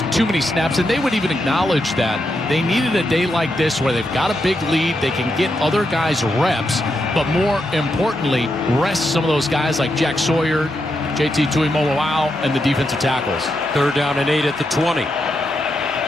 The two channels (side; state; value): left; noise; hum, 27 dB below the sound